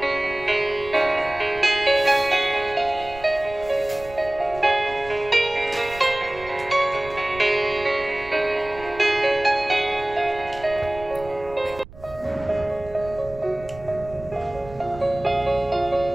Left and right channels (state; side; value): noise; right; rumble, 18 dB below the sound